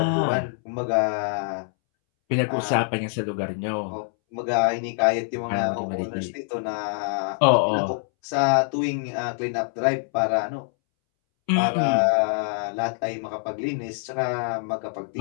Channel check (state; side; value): silent; right; 62 dB below the other